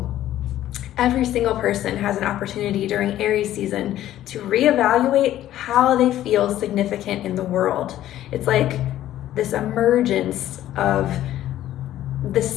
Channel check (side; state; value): right; quieter; 13.0 dB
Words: every single person has an opportunity during Aries season to reevaluate how they feel significant in the world. It's like this emergence of